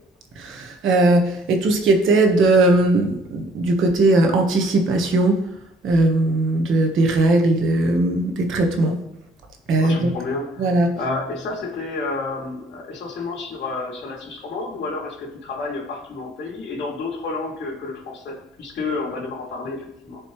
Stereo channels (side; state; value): both; normal; correlation 0.60